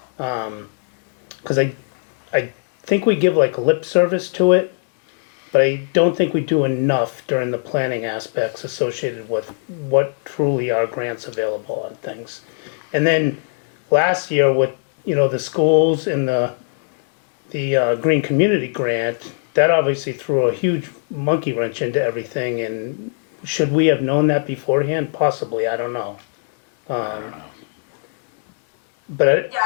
Because I think we give like lip service to it, but I don't think we do enough during the planning aspects associated with what truly are grants available on things. And then last year with, you know, the schools and the Green Community Grant, that obviously threw a huge monkey wrench into everything. And should we have known that beforehand? Possibly, I don't know. I don't know. But Yeah,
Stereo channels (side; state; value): right; silent; 63 dB below the other